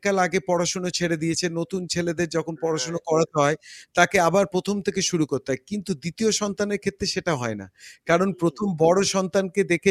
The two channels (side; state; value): both; identical; correlation 1.00